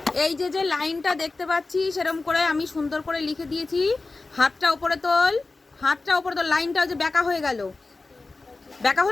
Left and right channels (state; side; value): quieter; right; 3.5 dB